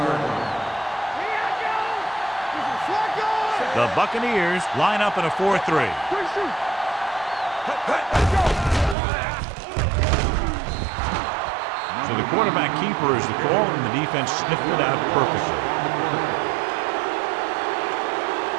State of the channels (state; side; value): drops out; left; at 9.0 s